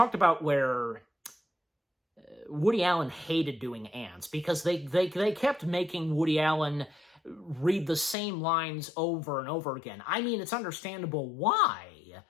about where Woody Allen hated doing Antz, because they kept making Woody Allen read the same lines over and over again. I mean, it's understandable why,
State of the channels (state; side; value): drops out; right; at 8.2 s